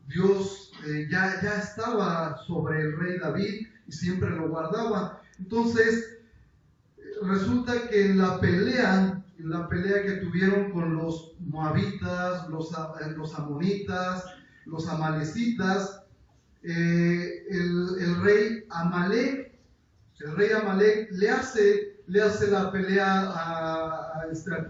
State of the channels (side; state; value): both; identical; correlation 1.00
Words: Dios ya estaba sobre el rey David y siempre lo guardaba. Entonces, resulta que en la pelea que tuvieron con los moabitas, los amonitas, los amalecitas, el rey Amalek le hace la pelea al